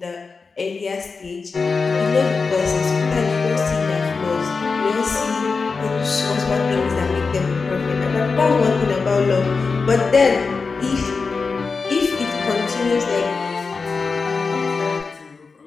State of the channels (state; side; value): quieter; right; 4.6 dB